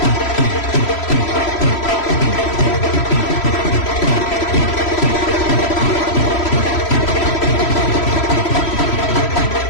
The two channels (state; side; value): late; right; 3.0 ms